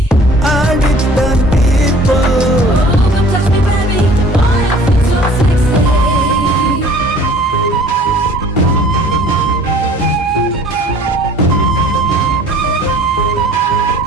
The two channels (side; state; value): both; normal; correlation 0.50